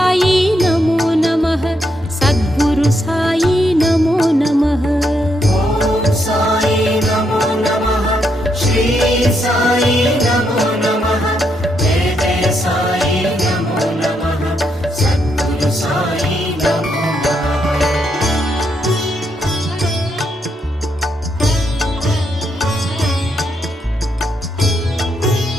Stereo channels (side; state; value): both; normal; correlation 0.78